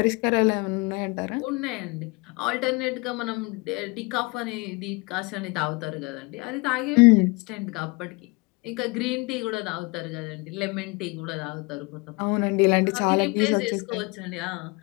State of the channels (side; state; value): right; quieter; 27.2 dB